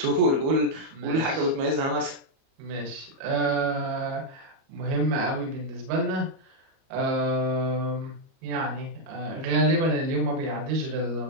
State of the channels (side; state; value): left; late; 37 ms